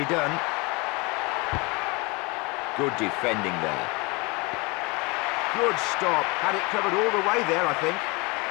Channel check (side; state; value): right; quieter; 27.1 dB